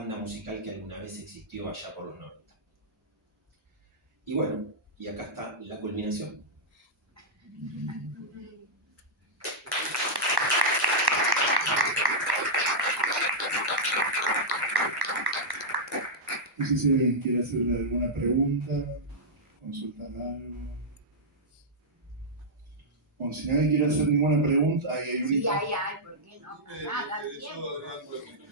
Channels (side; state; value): both; normal; correlation -0.09